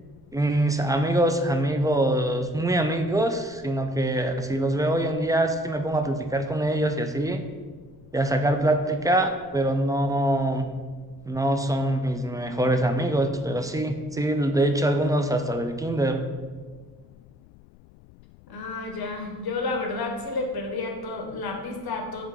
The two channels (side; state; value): left; noise; rumble, 24 dB below the sound